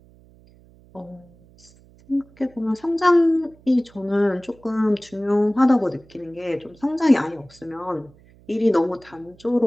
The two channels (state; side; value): noise; right; hum, 27 dB below the sound